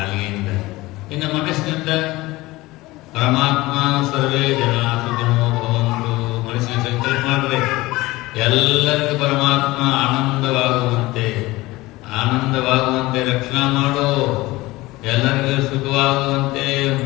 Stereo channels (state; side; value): quieter; right; 19.8 dB